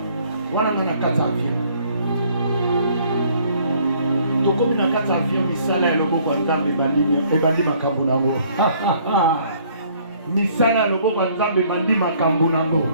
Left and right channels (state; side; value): inverted; both; correlation -0.61